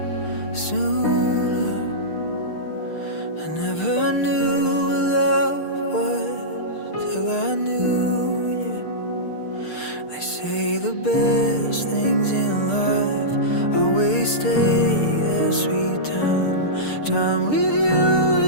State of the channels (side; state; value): right; late; 6.6 ms